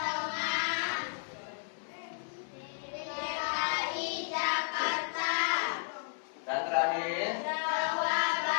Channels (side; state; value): right; silent; 56 dB below the other